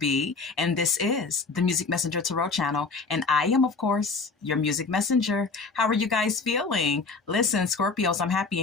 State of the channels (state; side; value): quieter; right; 4.2 dB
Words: and this is the Music Messenger Tarot channel, and I am, of course, your music messenger. How are you guys feeling? Listen, Scorpios, I'm happy